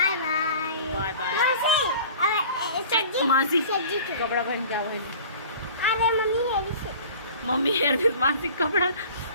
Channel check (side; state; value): both; inverted; correlation -0.44